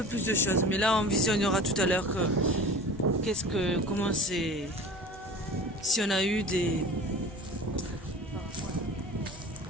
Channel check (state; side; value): normal; both; correlation 0.39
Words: plus de choses. Mais là, on visionnera tout à l'heure comment c'est... Si on a eu des